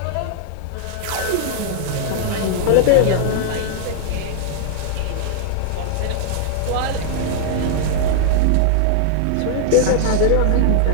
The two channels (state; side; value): different; both; correlation -0.01